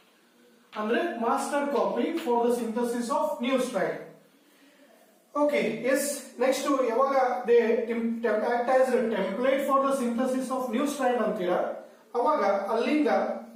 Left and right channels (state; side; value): identical; both; correlation 1.00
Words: ಅಂದ್ರೆ master copy for the synthesis of new strand. Okay yes next ಯಾವಾಗ they act as template for the synthesis of new strand ಅಂತೀರಾ ಅವಾಗ ಅಲ್ಲಿಂದ